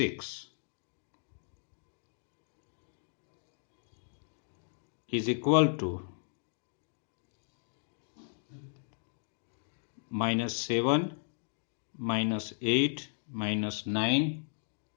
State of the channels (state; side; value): silent; right; digital silence